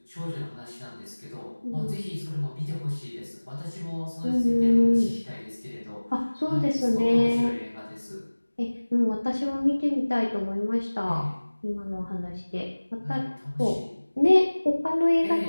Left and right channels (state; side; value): inverted; both; correlation -1.00